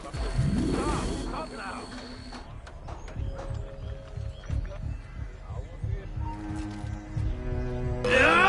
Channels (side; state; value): both; identical; correlation 1.00